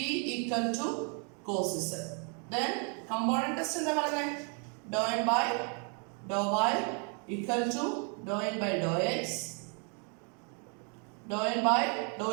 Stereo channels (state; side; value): quieter; left; 38.3 dB